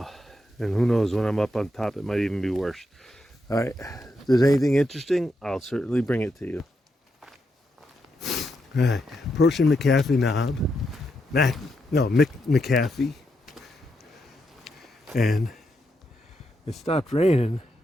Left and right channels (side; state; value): both; normal; correlation 0.82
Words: And who knows, when I'm up on top, it might even be worse. All right, if there's anything interesting, I'll certainly bring it to you. All right, approaching McAfee Knob. McAfee. And it stopped raining.